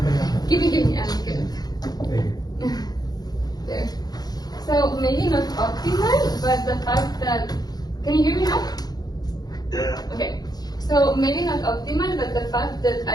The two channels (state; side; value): late; right; 0.19 ms